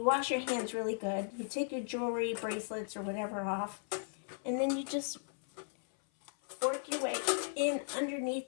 wash your hands really good. You take your jewelry, bracelets, or whatever off, and then you just work your way in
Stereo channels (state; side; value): silent; right; 54 dB below the other